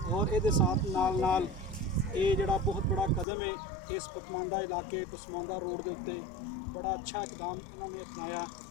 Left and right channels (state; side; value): drops out; right; at 3.2 s